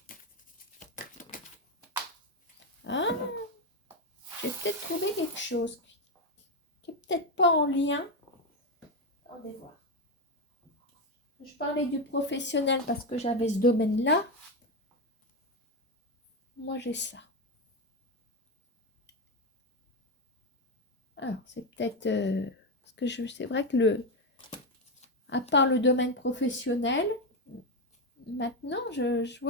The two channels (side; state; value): both; normal; correlation 0.10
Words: Hein? J'ai peut-être trouvé quelque chose qui n'est peut-être pas en lien. Attendez voir. Je parlais du professionnel parce que j'avais ce domaine-là. Moi, j'ai ça. Alors, c'est peut-être... parce que c'est vrai que à part le domaine professionnel, maintenant, je